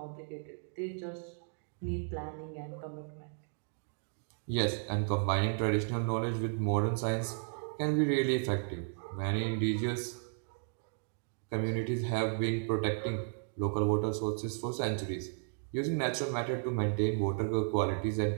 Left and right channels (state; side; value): silent; left; digital silence